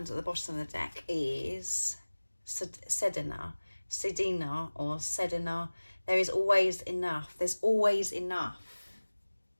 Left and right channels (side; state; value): both; inverted; correlation -1.00